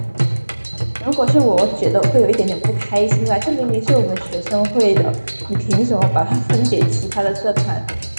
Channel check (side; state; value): both; inverted; correlation -1.00